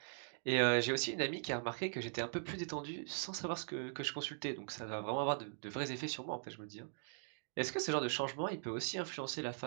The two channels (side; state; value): left; silent; digital silence